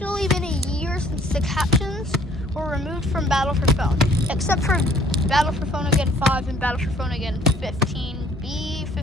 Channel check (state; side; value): normal; both; correlation 0.58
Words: been a year since the captions were removed from Battle for Phone, except for Battle for Phone Again 5 and Battle for Phone Again 15B,